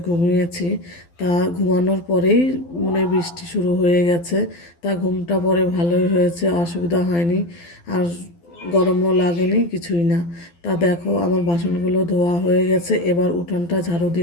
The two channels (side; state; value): right; late; 12 ms